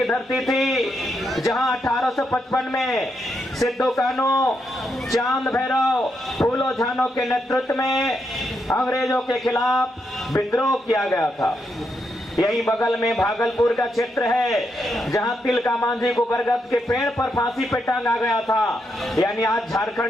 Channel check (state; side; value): normal; both; correlation 0.81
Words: धरती थी जहां 1855 में सिद्धो कान्हू, चांद भैरव, फूलो झानो के नेतृत्व में अंग्रेजों के खिलाफ विद्रोह किया गया था। यही बगल में भागलपुर का क्षेत्र है जहां तिलका मांझी को बरगद के पेड़ पर फांसी पे टांगा गया था। यानी आज